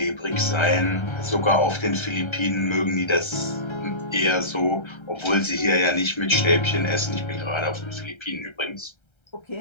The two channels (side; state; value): right; late; 1.3 ms